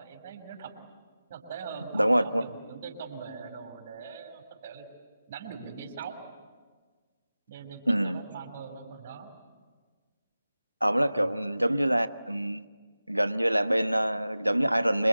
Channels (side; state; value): both; inverted; correlation -0.97